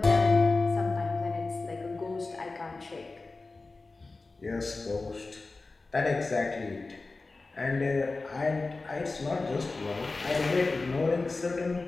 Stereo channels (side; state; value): right; quieter; 3.6 dB